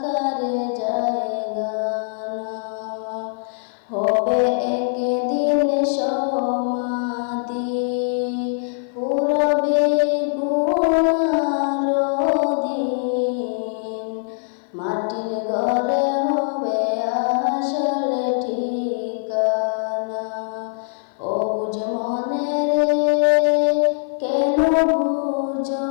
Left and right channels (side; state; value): right; silent; 55 dB below the other